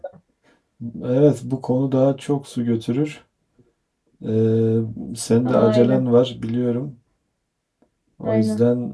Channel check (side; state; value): both; identical; correlation 1.00